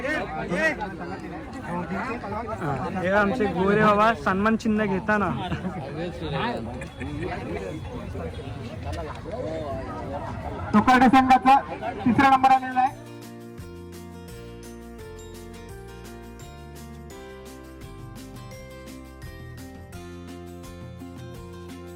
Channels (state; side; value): identical; both; correlation 1.00